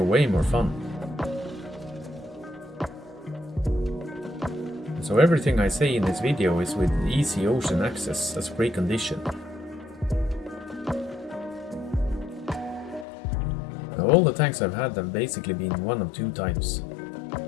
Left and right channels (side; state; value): right; drops out; at 13.1 s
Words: way more fun. So everything I say in this video is with easy ocean access as precondition. Now all the tanks I've had have basically been one of two types.